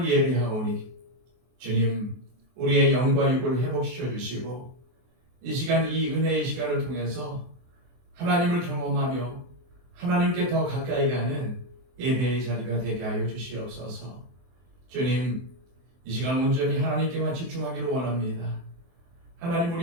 예배하오니 주님, 우리의 영과 육을 회복시켜 주시고 이 시간, 이 은혜의 시간을 통해서 하나님을 경험하며 하나님께 더 가까이 가는 예배의 자리가 되게 하여 주시옵소서. 주님, 이 시간 온전히 하나님께만 집중하기를 원합니다. 하나님,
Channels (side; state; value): left; late; 23 ms